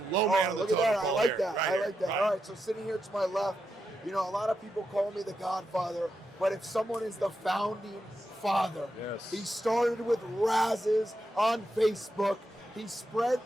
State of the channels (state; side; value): normal; both; correlation 0.86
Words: low man on the look at that. totem I pole like here. that. Right I here. like that. Right. All right, so sitting here to my left, you know, a lot of people call me the Godfather, but if someone is the founding father, Yes. he started with razzes on Facebook. He spread